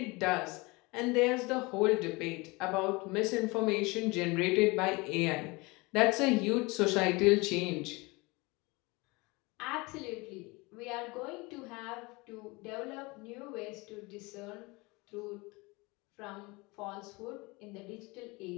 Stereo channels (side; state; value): right; quieter; 24.9 dB